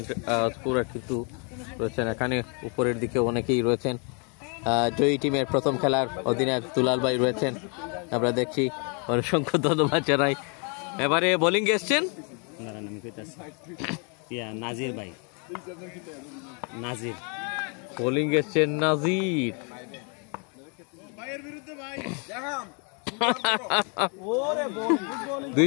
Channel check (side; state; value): right; quieter; 36.8 dB